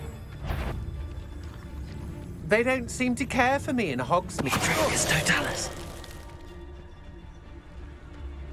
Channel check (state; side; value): identical; both; correlation 1.00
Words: They don't seem to care for me in Hogsmeade. It's Totalis.